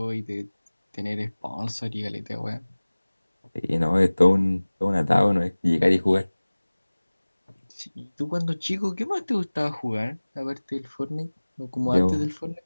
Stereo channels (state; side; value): inverted; both; correlation -1.00